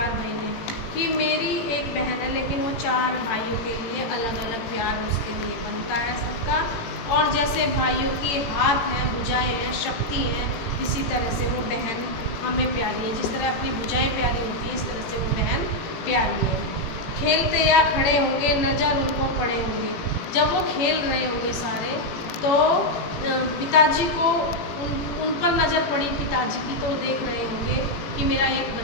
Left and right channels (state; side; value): late; right; 18 ms